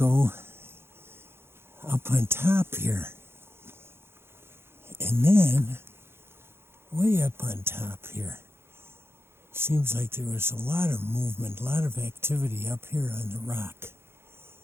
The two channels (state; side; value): late; left; 0.12 ms